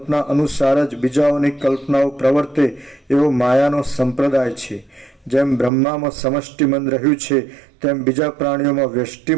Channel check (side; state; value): left; drops out; at 5.7 s